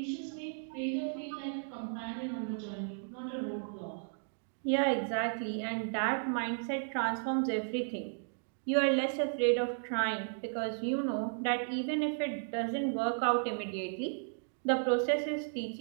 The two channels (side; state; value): left; silent; digital silence